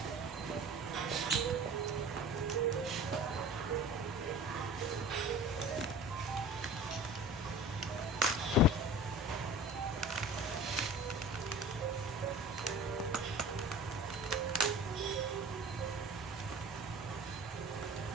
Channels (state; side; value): normal; both; correlation 0.39